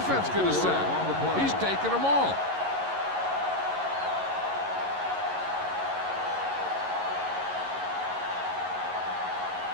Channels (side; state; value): left; late; 11 ms